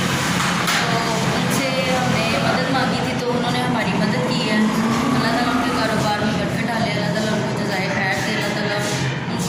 तो उनसे हमने मदद मांगी थी, तो उन्होंने हमारी मदद की है। अल्लाह ताला उनके कारोबार में बरकत डाले, अल्लाह ताला उनको जज़ाए खैर दे, अल्लाह ताला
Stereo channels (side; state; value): both; identical; correlation 1.00